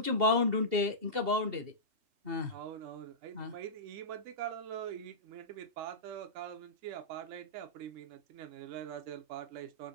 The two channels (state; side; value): late; left; 2.7 ms